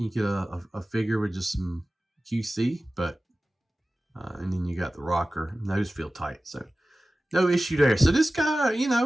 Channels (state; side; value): normal; both; correlation 0.96